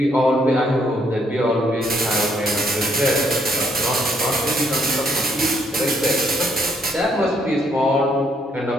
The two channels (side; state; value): both; normal; correlation 0.70